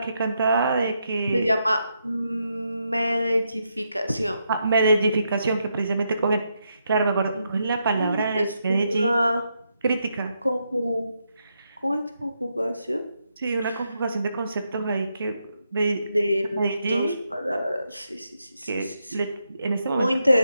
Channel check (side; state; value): both; inverted; correlation -0.82